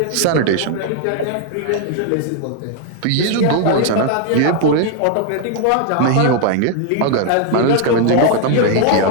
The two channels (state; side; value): different; both; correlation 0.00